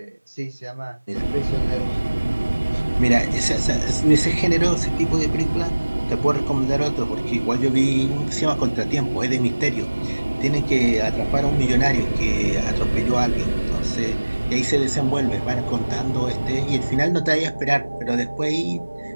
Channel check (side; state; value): both; inverted; correlation -1.00